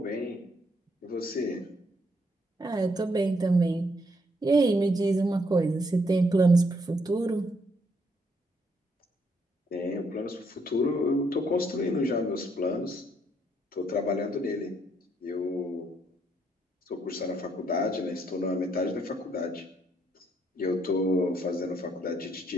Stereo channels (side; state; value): both; normal; correlation 0.72